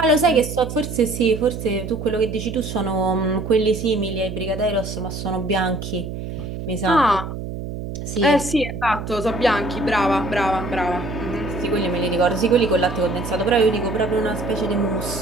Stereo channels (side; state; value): right; noise; hum, 7 dB below the sound